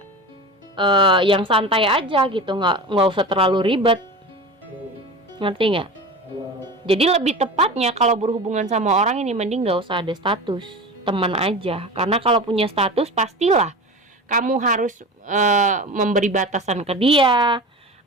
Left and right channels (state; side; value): normal; both; correlation 0.31